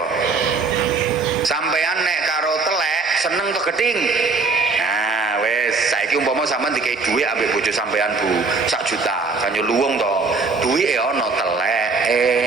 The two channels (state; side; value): quieter; left; 4.1 dB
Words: Sampean nek karo telek seneng to geding? Nah, wis saiki umpama sampean dikei dhuwit ambek bojo sampean Bu, 1 juta, kan yo luwung to. Dhuwite ana teleke.